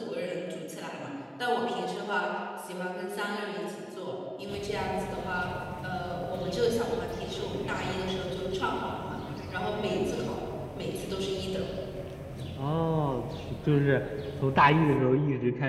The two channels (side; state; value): both; identical; correlation 1.00